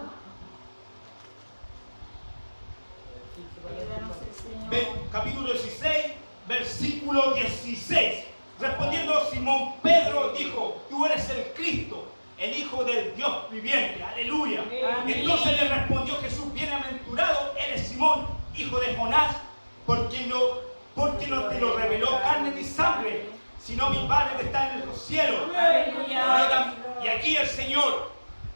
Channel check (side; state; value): both; inverted; correlation -1.00